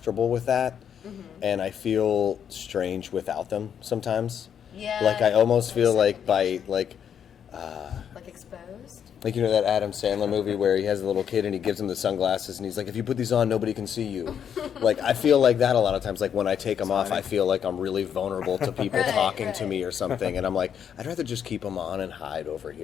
with that, and I feel strange without them sometimes. Yeah. Like I almost feel like second by nature. like Exposed. like you know that Adam Sandler movie where he has a little kid and he gives him the sunglasses and he's like, if you put these on, nobody can see you. Like I feel like that a lot of times. Like when I take them off, I feel like I'm really vulnerable to people Right, talking to right. me or something, and I'm like, I'd rather just keep them on and hide over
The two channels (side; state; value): right; quieter; 8.4 dB